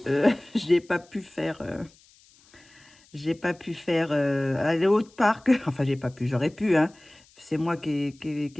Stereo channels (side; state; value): left; noise; hiss, 29 dB below the sound